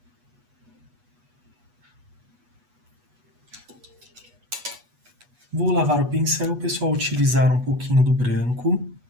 Vou lavar o pincel, pessoal, utilizar um pouquinho do branco.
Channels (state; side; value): late; left; 8.2 ms